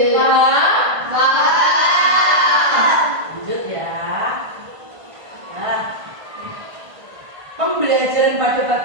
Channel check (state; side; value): late; left; 1.5 ms